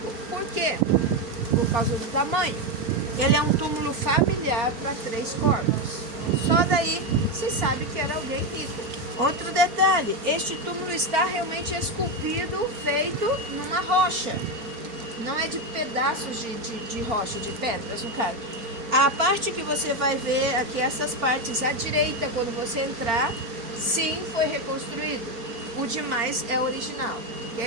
Por quê? Por causa do tamanho. Ele é um túmulo familiar para 3 corpos. Só daí se sabe que era alguém rico. Outro detalhe, este túmulo está realmente esculpido, feito numa rocha. Não é de pedaços de rocha, de pedras, no caso. A parte que você vai ver aqui, essas partes à direita, quando você entrar, sim, foi reconstruído. O demais é original,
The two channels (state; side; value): late; left; 4.3 ms